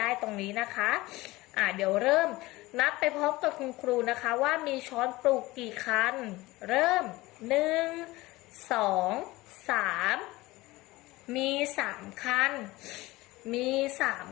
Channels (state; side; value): quieter; right; 19.8 dB